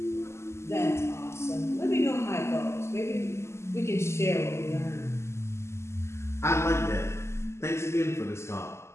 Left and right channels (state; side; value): late; right; 0.13 ms